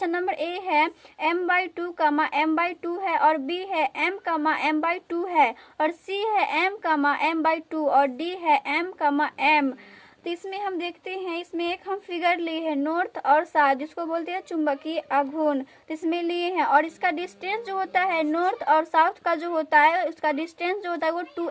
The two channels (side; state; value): both; identical; correlation 1.00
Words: नंबर ए है M/2 M/2 है, और बी है M/M/2 है, और सी है M/M/2, और डी है M/M। तो इसमें हम देखते हैं, इसमें एक हम फिगर लिए हैं नॉर्थ और साउथ, जिसको बोलते हैं चुंबकीय आघूर्ण। तो इसमें लिए हैं, और इसका डिस्टेंस जो होता है नॉर्थ और साउथ का जो होता है उसका डिस्टेंस जो होता है वो